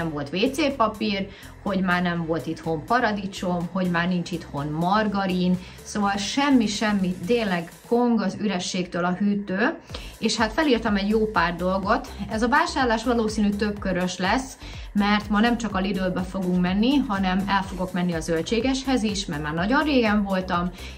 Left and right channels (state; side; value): identical; both; correlation 1.00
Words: volt WC papír, hogy már nem volt itthon paradicsom, hogy már nincs itthon margarin, szóval semmi, tényleg kong az ürességtől a hűtő, és hát felírtam egy jó pár dolgot. Ez a vásárlás valószínű többkörös lesz, mert ma nem csak a Lidlbe fogunk menni, hanem el fogok menni a zöldségeshez is, mert már nagyon régen voltam,